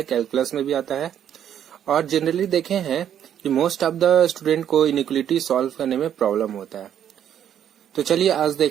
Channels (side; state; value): left; quieter; 9.7 dB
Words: कैलकुलस में भी आता है और जनरली देखे हैं कि मोस्ट ऑफ द स्टूडेंट को इनइक्वालिटी सॉल्व करने में प्रॉब्लम होता है। तो चलिए आज